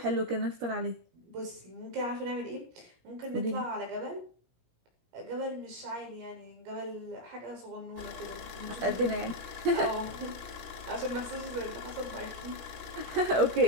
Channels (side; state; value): left; late; 16 ms